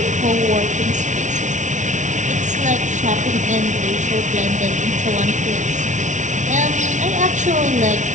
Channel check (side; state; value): left; late; 0.36 ms